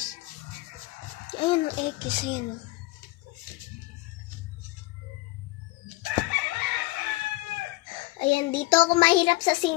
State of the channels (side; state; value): right; quieter; 20.9 dB